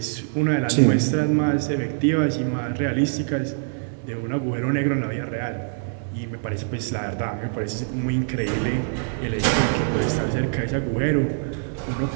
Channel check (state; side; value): silent; left; 63 dB below the other